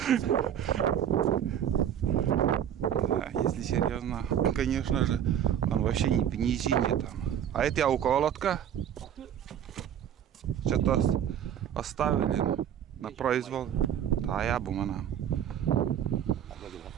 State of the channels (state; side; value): quieter; left; 9.6 dB